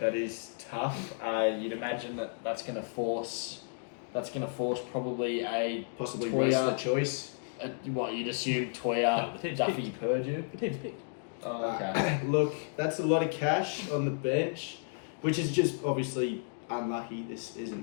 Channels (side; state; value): right; silent; digital silence